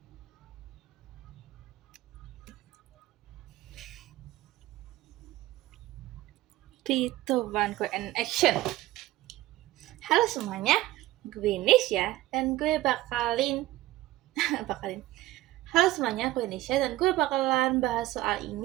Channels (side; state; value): left; quieter; 16.4 dB